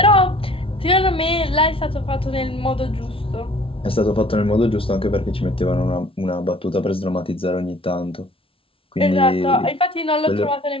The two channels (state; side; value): late; right; 0.26 ms